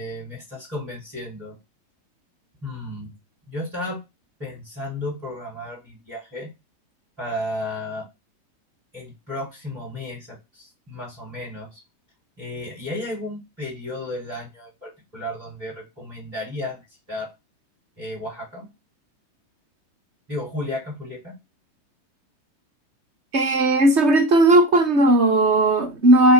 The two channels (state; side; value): late; left; 3.2 ms